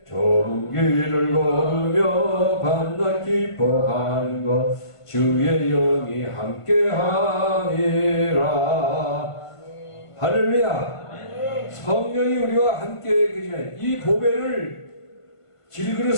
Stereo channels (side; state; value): right; late; 1.5 ms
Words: 좁은 길을 걸으며 밤낮 기뻐하는 것 주의 영이 함께 하니라. 할렐루야. 성령이 우리와 함께 계시네. 이 보배를